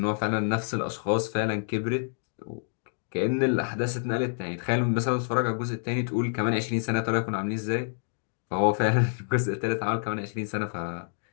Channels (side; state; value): right; silent; digital silence